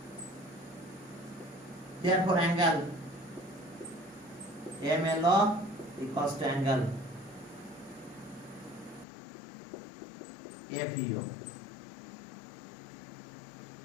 angle MLO equals to angle FEO।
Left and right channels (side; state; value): right; drops out; at 9.1 s